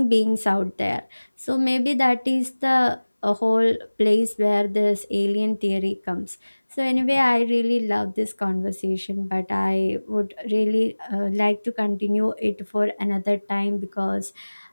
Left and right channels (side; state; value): both; inverted; correlation -1.00